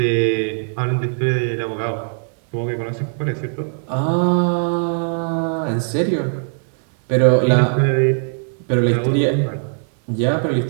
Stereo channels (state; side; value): silent; left; 66 dB below the other